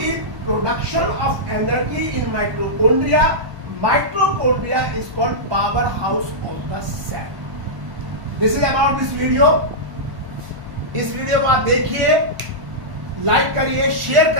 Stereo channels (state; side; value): late; left; 1.1 ms